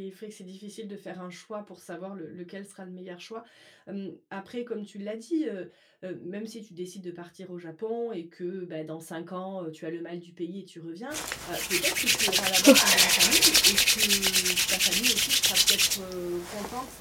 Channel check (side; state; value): both; identical; correlation 1.00